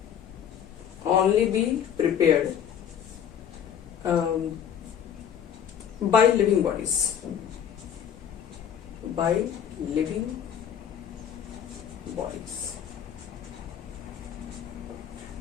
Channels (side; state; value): right; quieter; 8.9 dB